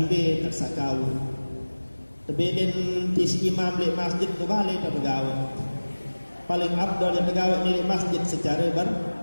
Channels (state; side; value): inverted; both; correlation -1.00